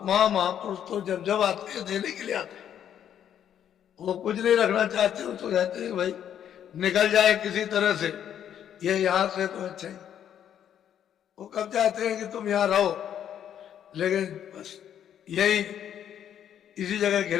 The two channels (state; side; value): quieter; right; 9.7 dB